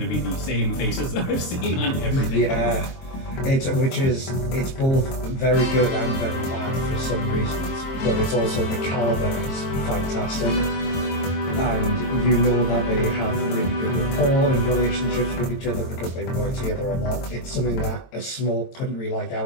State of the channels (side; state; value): right; late; 22 ms